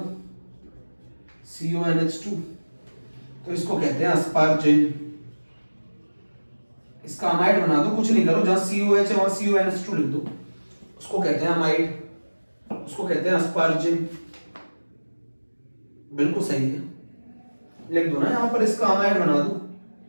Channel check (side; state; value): both; inverted; correlation -1.00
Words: CONH2, तो इसको कहते हैं अस्पार्जिन। इसका अमाइड बना दो, कुछ नहीं करो, जहां COH है वहां CONH2 लिख दो, उसको कहते हैं अमाइड, उसको कहते हैं अस्पार्जिन। बिल्कुल सही है, लिख दो ना यहां पर, इसका अमाइड बना दो,